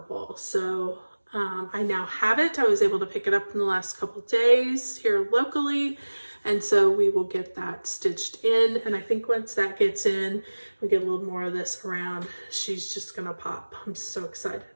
So I now have it. I was able to pick it up in the last couple of days here locally. And so we will get that stitched in. And I think once that gets in, we get a little more of this around, she's just gonna pop. I'm so excited.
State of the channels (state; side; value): inverted; both; correlation -1.00